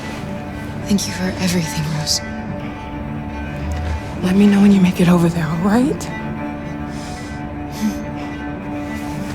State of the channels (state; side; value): identical; both; correlation 1.00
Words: Thank you for everything, Rose. Let me know when you make it over there, all right?